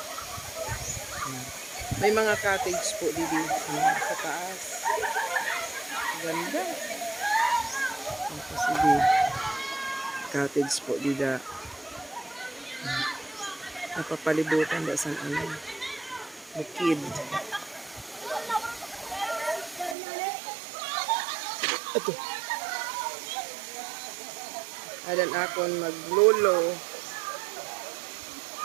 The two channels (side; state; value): left; drops out; at 20.0 s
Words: May mga cottage po dito sa taas. Ganda. Sige. Cottage po dito. Napapalibutan da sa bukid. Ito. Adan akon maglolo.